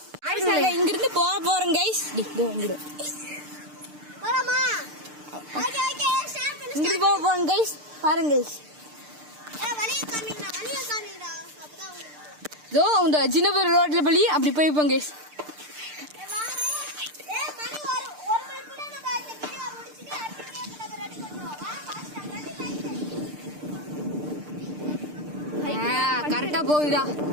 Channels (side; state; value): left; late; 6.7 ms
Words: இங்கிருந்து போறோம் கைஸ். இங்கிருந்து போறோம் கைஸ். பாருங்க கைஸ், இதோ இந்த ஜினபர் ரோட்ல பள்ளி அப்படி போய்ப்போம் கைஸ். கரெக்டா போகுதா